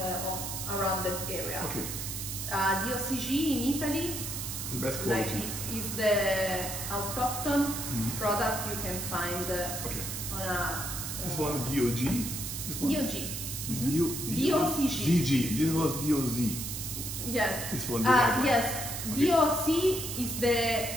around that area. Okay. The OCG in Italy, The best like quality. is the autochthon product you can find Okay. on a This one is DOG. This one? DOG. This DOCG. DG. This was DOZ. Yes. This one. the white one. Yes. Okay. DOC is the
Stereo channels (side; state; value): right; noise; hiss, 5 dB below the sound